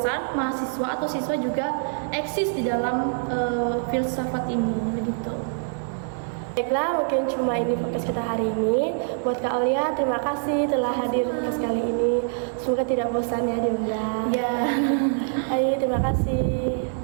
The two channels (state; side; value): silent; left; 59 dB below the other